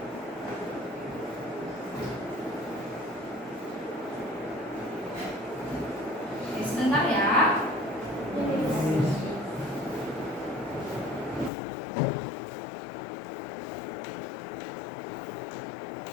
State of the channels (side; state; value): right; drops out; at 11.5 s